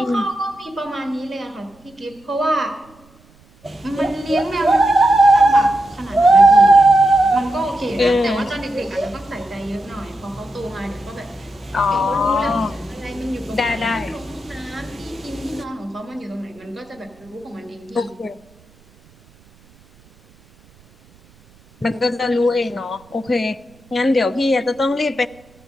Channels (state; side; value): noise; right; rumble, 29 dB below the sound